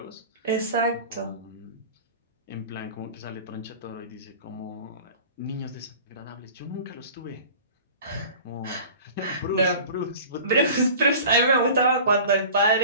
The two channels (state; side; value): inverted; both; correlation -0.41